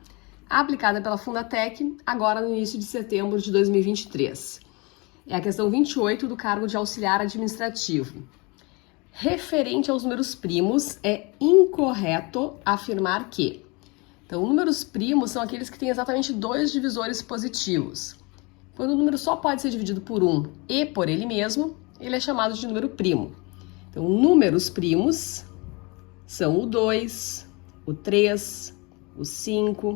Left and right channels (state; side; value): quieter; right; 27.6 dB